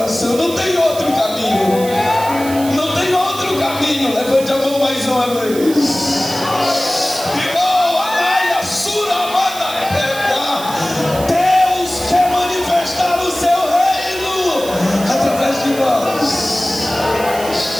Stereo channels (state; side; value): noise; right; hiss, 12 dB below the sound